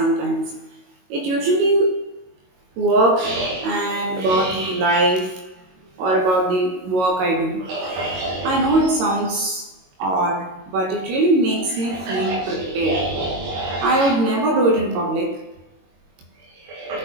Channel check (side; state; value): left; late; 22 ms